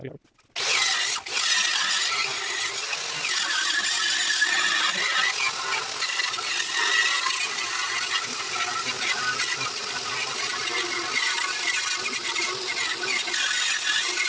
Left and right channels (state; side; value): identical; both; correlation 1.00